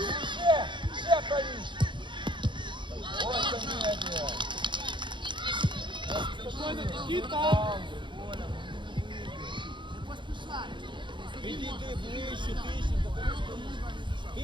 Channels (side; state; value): left; late; 0.23 ms